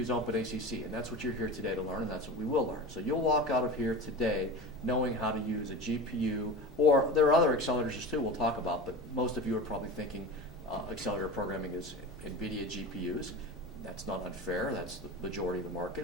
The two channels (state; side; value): normal; both; correlation 0.30